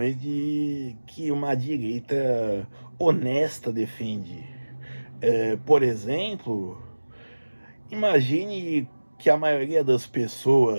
que uma direita honesta defende. Por exemplo, imagine que a maioria das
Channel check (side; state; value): both; inverted; correlation -1.00